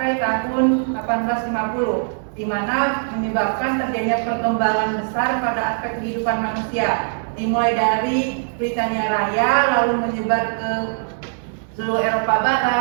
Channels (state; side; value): silent; left; digital silence